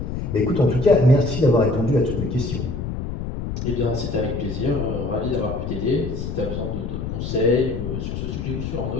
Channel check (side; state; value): left; noise; rumble, 5 dB below the sound